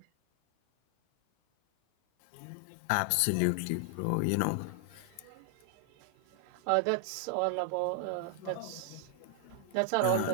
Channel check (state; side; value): different; both; correlation 0.00